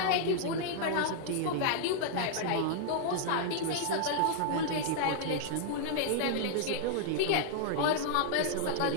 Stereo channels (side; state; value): both; different; correlation -0.01